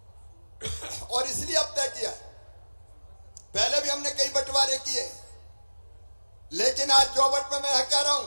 और इसलिए अब तय किया, पहले भी हमने कई बंटवारे किए, लेकिन आज जोबट में मैं कह रहा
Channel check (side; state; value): both; inverted; correlation -1.00